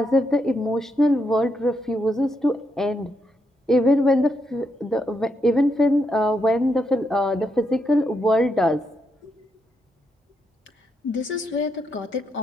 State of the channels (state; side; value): normal; both; correlation 0.80